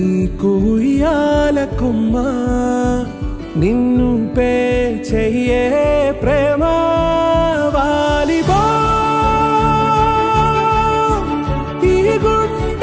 కుయ్యాల కొమ్మ, నిన్ను పే చెయ్యే ప్రేమ వాలిబా ఈ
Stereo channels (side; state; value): both; identical; correlation 1.00